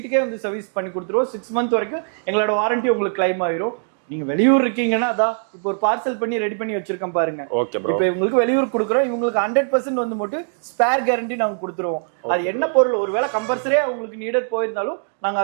வந்து சர்வீஸ் பண்ணி கொடுத்துருவோம். 6 மந்த் வரைக்கும் எங்களோட வாரண்டி உங்களுக்கு கிளைம் ஆயிரும். நீங்க வெளியூர் இருக்கீங்கன்னா அதான் இப்போ ஒரு பார்சல் பண்ணி ரெடி பண்ணி வச்சிருக்கேன் பாருங்க. இப்போ இவங்களுக்கு வெளியூர் கொடுக்குறோம். இவங்களுக்கு 100% வந்து மட்டும் ஸ்பேர் கேரண்டி நாங்க கொடுத்துருவோம். அது என்ன பொருள் ஒருவேளை கம்பல்சரியா உங்களுக்கு நீடட் போயிருந்தாலும் நாங்க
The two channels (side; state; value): left; silent; digital silence